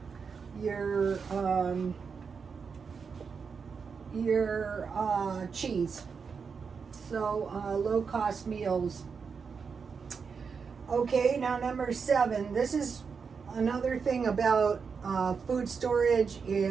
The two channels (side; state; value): left; quieter; 5.7 dB